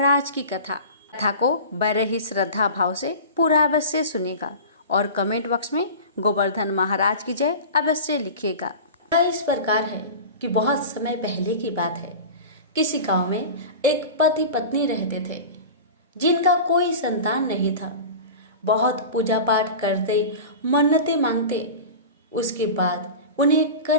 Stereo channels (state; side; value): inverted; both; correlation -0.33